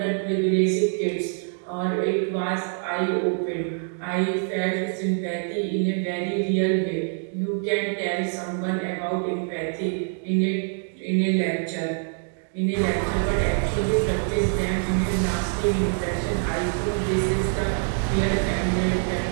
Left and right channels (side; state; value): left; silent; 55 dB below the other